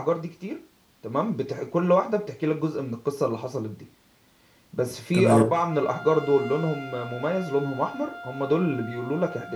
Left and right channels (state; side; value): identical; both; correlation 1.00